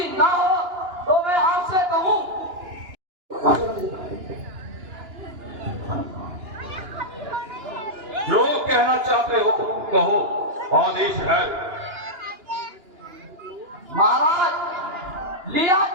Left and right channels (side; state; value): left; late; 2.9 ms